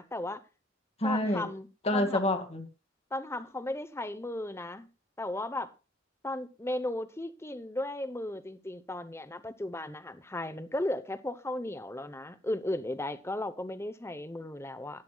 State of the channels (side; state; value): both; normal; correlation 0.66